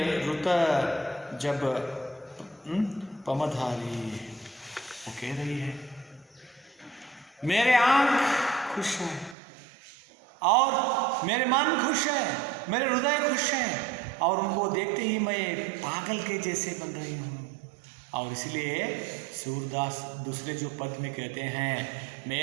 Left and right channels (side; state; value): left; drops out; at 9.3 s